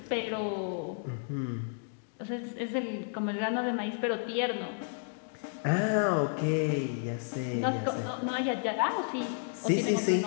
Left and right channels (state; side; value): silent; right; digital silence